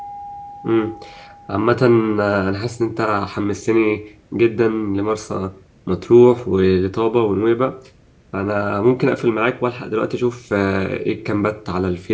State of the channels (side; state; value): both; identical; correlation 1.00